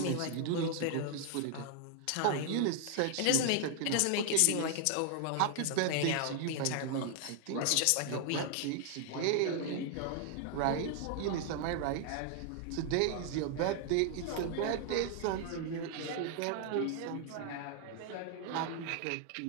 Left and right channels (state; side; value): different; both; correlation 0.00